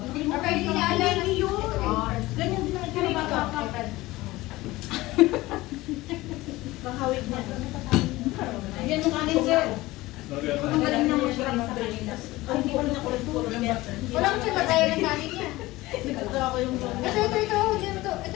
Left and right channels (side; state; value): right; quieter; 19.0 dB